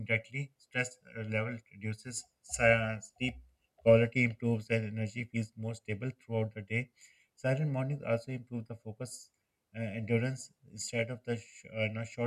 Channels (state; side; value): identical; both; correlation 1.00